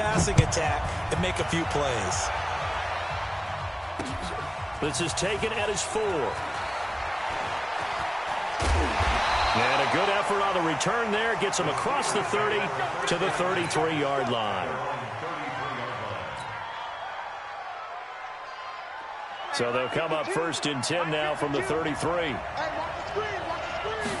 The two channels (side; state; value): both; identical; correlation 1.00